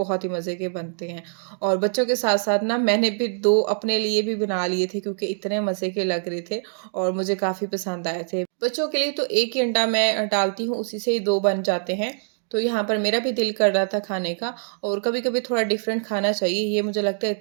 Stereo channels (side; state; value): left; silent; digital silence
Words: ही मज़े के बनते हैं। और बच्चों के साथ-साथ ना मैंने भी 2 अपने लिए भी बना लिए थे क्योंकि इतने मज़े के लग रहे थे और मुझे काफ़ी पसंद आए थे। बच्चों के लिए तो 1 ही अंडा मैं डालती हूँ, उसी से ही 2 बन जाते हैं। तो यहाँ पर मेरा भी दिल कर रहा था खाने का और कभी-कभी थोड़ा डिफरेंट खाना चाहिए, ये मुझे लगता है